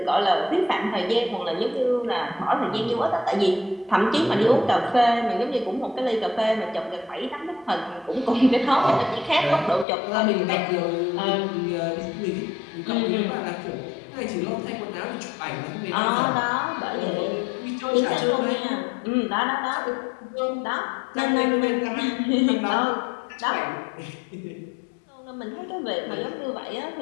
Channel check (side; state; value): right; drops out; at 9.9 s